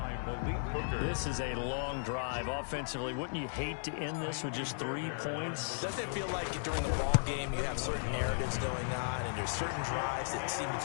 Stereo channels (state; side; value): silent; right; digital silence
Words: This is a long drive offensively. Wouldn't you hate to end this with just 3 points? Doesn't it feel like during the ball game you have certain narratives going on and there's certain drives that seem to